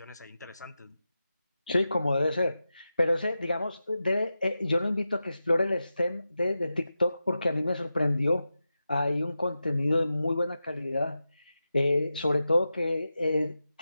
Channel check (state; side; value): inverted; both; correlation -0.91